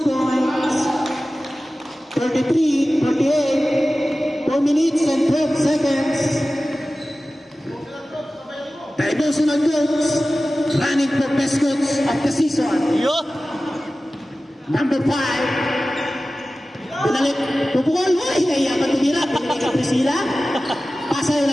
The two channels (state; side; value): normal; both; correlation 0.96